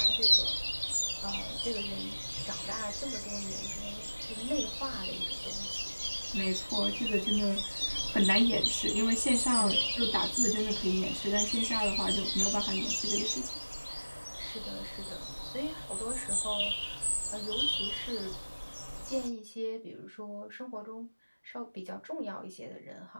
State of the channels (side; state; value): both; inverted; correlation -1.00